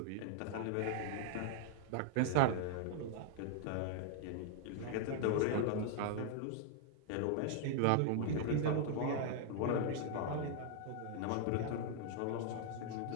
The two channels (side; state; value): both; different; correlation 0.00